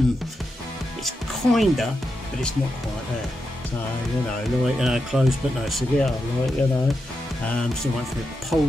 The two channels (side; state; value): both; normal; correlation 0.87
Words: it's kinda, but it's not quite there. So, you know, like, you know, close but no cigar, like, you know. Still waiting for the